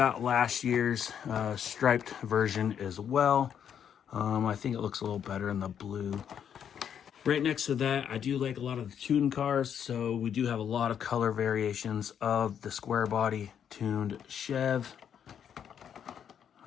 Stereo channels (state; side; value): quieter; right; 8.6 dB